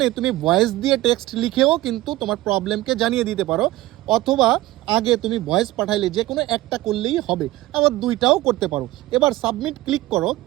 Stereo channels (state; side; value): quieter; left; 17.2 dB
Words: তুমি ভয়েস দিয়ে টেক্সট লিখেও কিন্তু তোমার প্রবলেমকে জানিয়ে দিতে পারো, অথবা আগে তুমি ভয়েস পাঠাইলে যে কোনো একটা করলেই হবে, আবার দুইটাও করতে পারো। এবার সাবমিট ক্লিক করো।